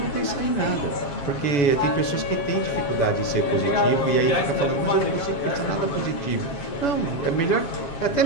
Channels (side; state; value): right; late; 7.0 ms